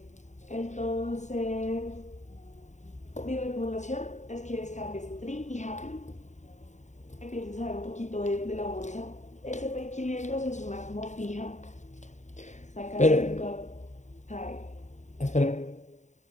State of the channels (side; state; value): right; late; 0.34 ms